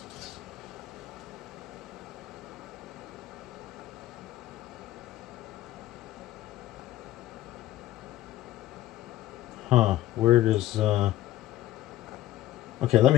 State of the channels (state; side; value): quieter; right; 14.1 dB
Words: Huh, where does, okay, let